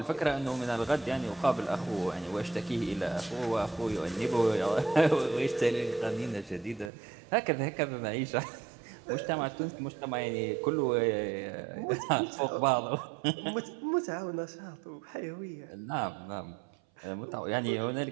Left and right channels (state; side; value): drops out; left; at 6.9 s